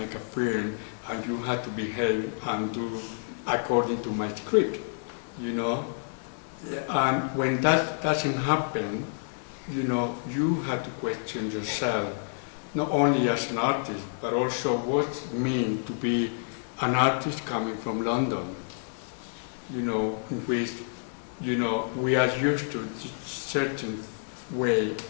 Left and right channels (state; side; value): silent; right; digital silence